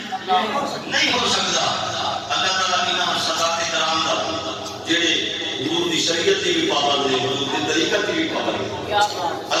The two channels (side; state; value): both; identical; correlation 1.00